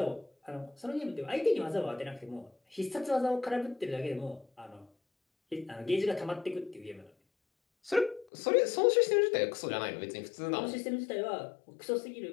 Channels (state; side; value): drops out; right; at 8.2 s